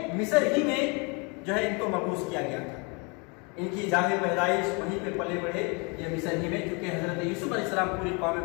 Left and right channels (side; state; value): right; quieter; 31.5 dB